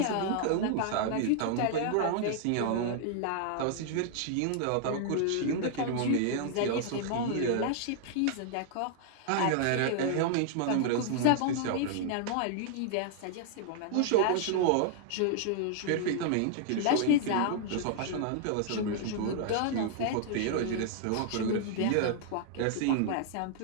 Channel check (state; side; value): different; both; correlation 0.00